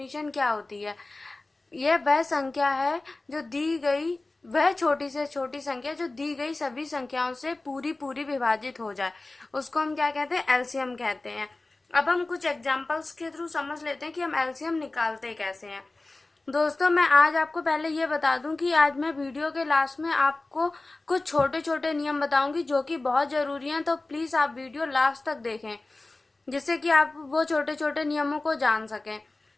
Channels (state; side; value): quieter; right; 3.1 dB